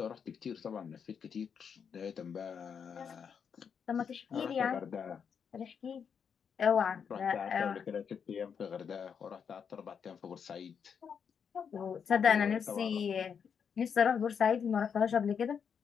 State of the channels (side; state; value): right; quieter; 7.0 dB